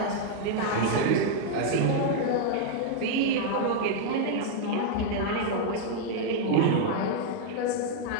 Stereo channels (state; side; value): different; both; correlation -0.01